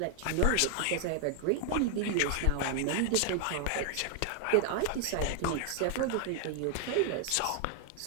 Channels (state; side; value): different; both; correlation 0.00